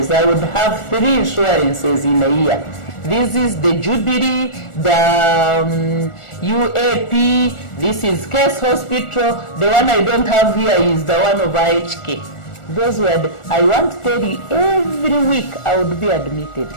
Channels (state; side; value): late; right; 1.4 ms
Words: I would have 3 insurances in a year. This is the Jubilee, the UAP, this is Case Hospital. The one I don't have here is the one of IHK. Those were I want to tell you, every week I would be admitted.